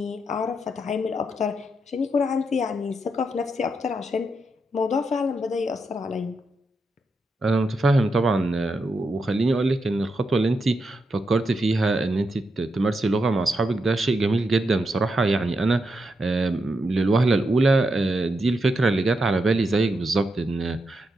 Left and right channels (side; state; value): both; normal; correlation 0.84